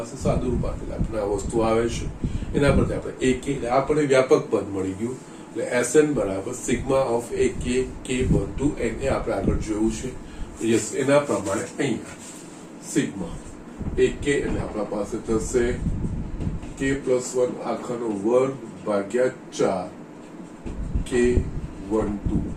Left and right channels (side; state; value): both; identical; correlation 1.00